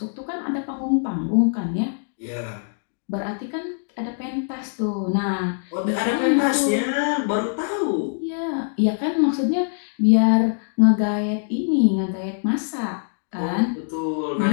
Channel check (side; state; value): right; silent; digital silence